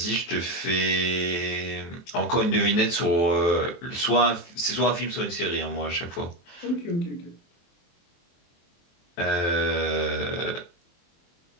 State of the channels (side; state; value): right; late; 23 ms